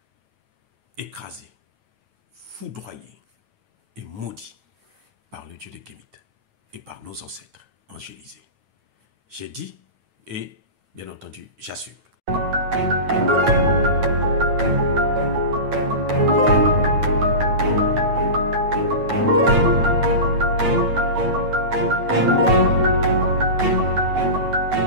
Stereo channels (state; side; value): late; left; 9.1 ms